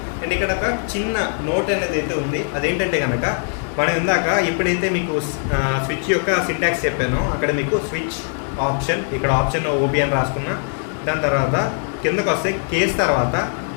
అండ్ ఇక్కడ ఒక చిన్న నోట్ అనేది అయితే ఉంది. అదేంటంటే కనుక మనం ఇందాక ఎప్పుడైతే మీకు స్విచ్ యొక్క సింటాక్స్ చెప్పానో అక్కడ మీకు స్విచ్ ఆప్షన్, ఇక్కడ ఆప్షన్ ఓబీ అని రాసుకున్నా. దాని తర్వాత కిందకు వస్తే కేస్ తర్వాత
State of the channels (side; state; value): right; silent; 56 dB below the other